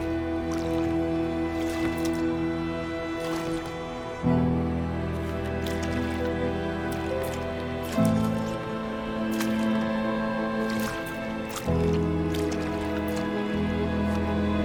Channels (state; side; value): identical; both; correlation 1.00